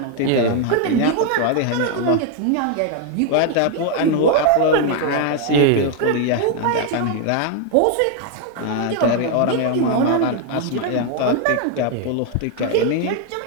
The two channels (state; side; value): different; both; correlation 0.00